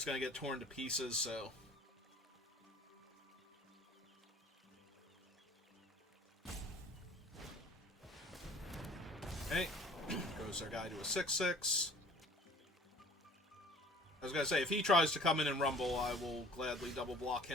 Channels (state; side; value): normal; both; correlation 0.50